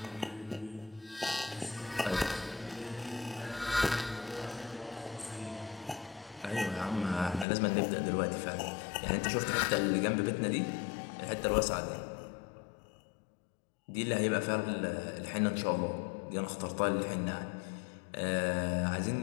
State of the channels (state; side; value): drops out; right; at 7.5 s